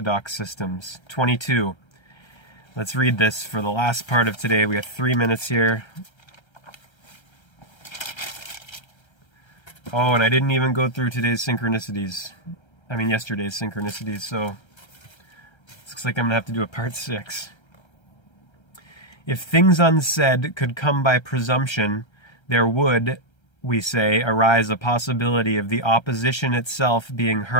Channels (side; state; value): right; late; 1.3 ms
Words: Systems. 22. Let's read this for the last part of today. We have 3 minutes here. Oh, and I didn't even go through yesterday's synchronicities. So it looks like I'm going to have to do a part 6. If things unsaid could come by presumption, there would, we say, arise a possibility of the opposition itself being